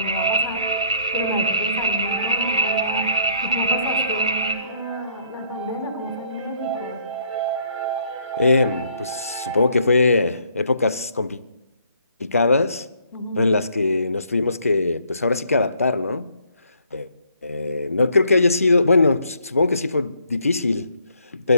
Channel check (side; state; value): both; inverted; correlation -0.66